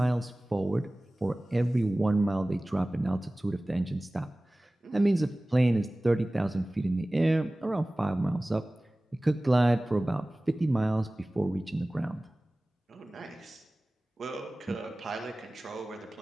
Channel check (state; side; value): normal; both; correlation 0.98